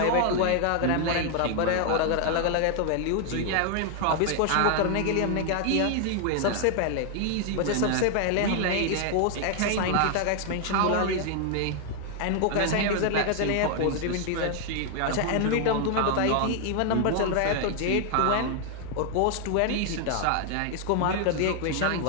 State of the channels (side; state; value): both; different; correlation 0.00